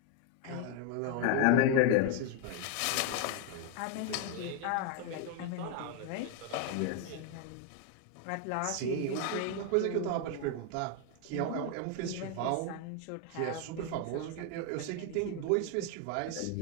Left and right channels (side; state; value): both; different; correlation 0.01